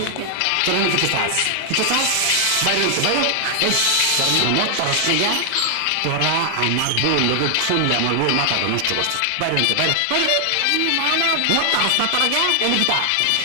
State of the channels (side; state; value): both; different; correlation 0.00